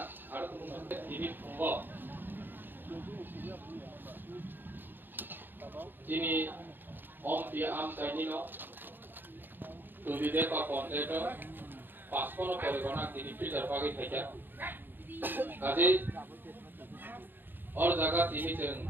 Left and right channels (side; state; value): left; late; 0.093 ms